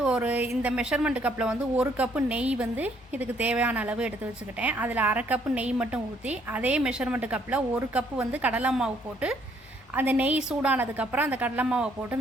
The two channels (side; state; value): both; normal; correlation 0.67